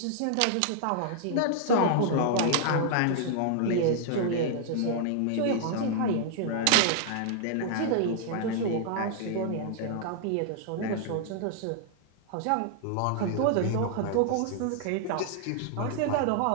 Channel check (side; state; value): both; different; correlation 0.00